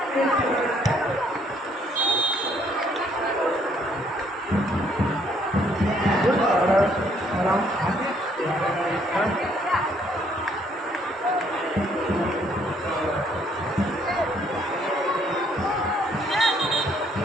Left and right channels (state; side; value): normal; both; correlation 0.66